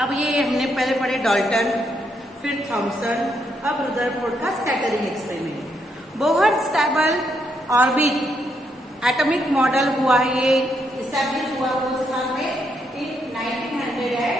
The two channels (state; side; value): normal; both; correlation 0.77